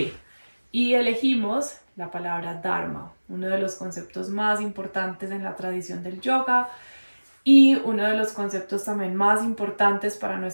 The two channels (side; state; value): both; inverted; correlation -1.00